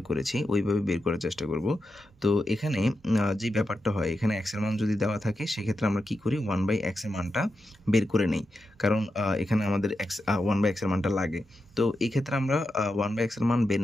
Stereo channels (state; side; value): normal; both; correlation 0.88